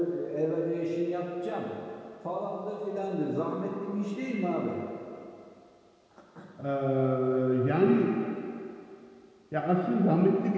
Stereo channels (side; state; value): both; identical; correlation 1.00